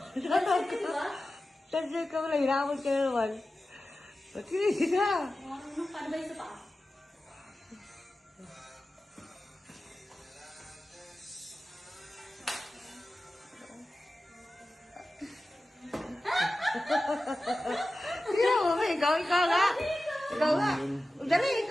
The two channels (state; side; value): normal; both; correlation 0.94